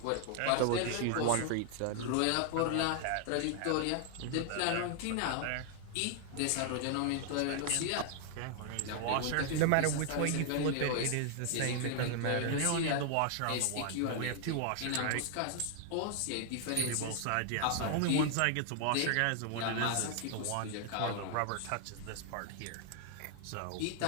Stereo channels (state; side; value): different; both; correlation 0.00